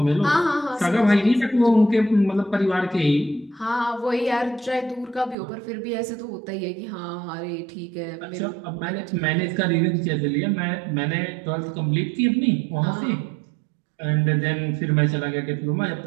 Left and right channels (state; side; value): drops out; left; at 5.4 s